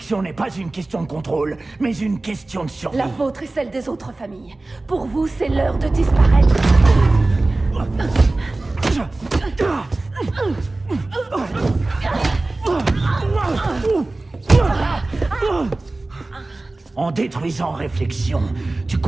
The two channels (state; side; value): quieter; left; 3.0 dB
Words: n'est pas une question de contrôle, mais une question de survie. La vôtre et celle des autres familles. Pour vous, c'est l'heure de disparaître. En détruisant Réflexion, tu